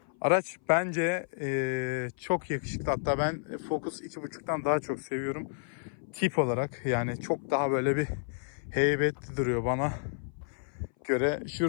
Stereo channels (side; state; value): right; silent; 57 dB below the other